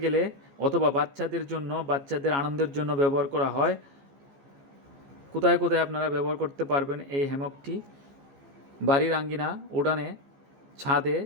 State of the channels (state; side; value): late; left; 14 ms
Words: গেলে অথবা বাচ্চাদের আনন্দের জন্য ব্যবহার করা হয়। কোথায় কোথায় আপনারা ব্যবহার করতে পারবেন এই হ্যামকটি? বাড়ির আঙ্গিনা, উঠানে, ছাদে,